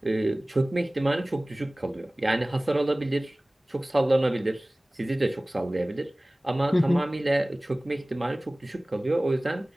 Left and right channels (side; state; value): both; normal; correlation 0.98